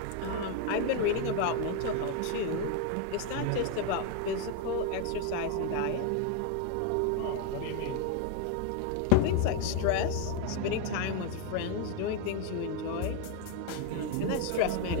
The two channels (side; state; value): both; different; correlation 0.01